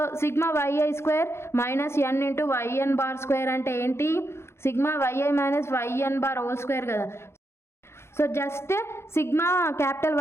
sigma yi² minus n into yn² అంటే ఏంటి, sigma yi minus yn² whole square కదా. So just sigma capital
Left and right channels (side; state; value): right; late; 0.12 ms